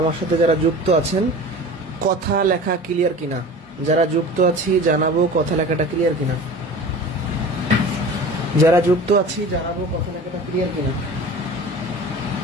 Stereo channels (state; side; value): normal; both; correlation 0.38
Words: সাথে যারা যুক্ত আছেন, কথা লেখা ক্লিয়ার কিনা? যারা যুক্ত আছি জানাবো কথা লেখাটা ক্লিয়ার কিনা। যারা যুক্ত আছি জানাবো কথা লেখাটা ক্লিয়ার কিনা।